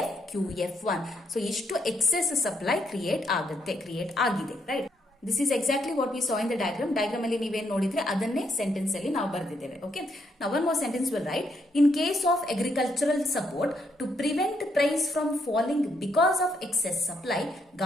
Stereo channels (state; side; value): normal; both; correlation 0.76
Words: So ಇಷ್ಟು ಎಕ್ಸೆಸ್ ಸಪ್ಲೈ ಕ್ರಿಯೇಟ್ ಆಗಿದೆ, right. This is exactly what we saw in the diagram. Diagram ಅಲ್ಲಿ ನೀವೇನ್ ನೋಡಿದ್ರೆ ಅದನ್ನೇ ಸೆಂಟೆನ್ಸ್ ಅಲ್ಲಿ ನಾವು ಬರೆದಿದ್ದೇವೆ. Okay, now one more sentence will write. In case of agricultural support to prevent price from falling because of excess supply,